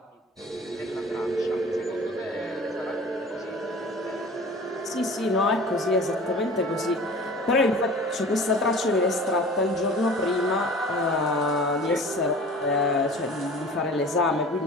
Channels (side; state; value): both; normal; correlation 0.42